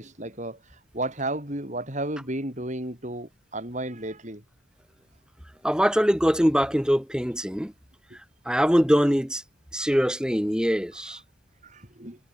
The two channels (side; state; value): both; normal; correlation 0.90